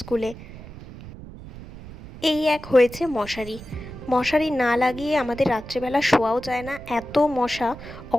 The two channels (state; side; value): noise; right; rumble, 15 dB below the sound